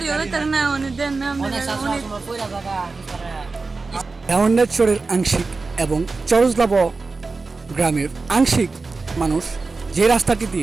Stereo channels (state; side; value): quieter; left; 4.0 dB